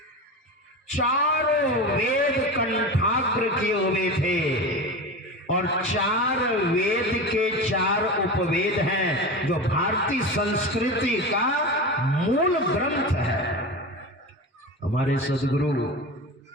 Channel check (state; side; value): normal; both; correlation 0.26